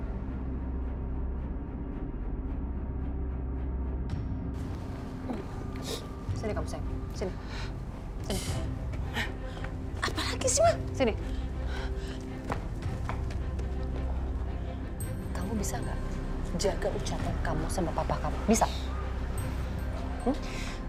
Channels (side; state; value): both; identical; correlation 1.00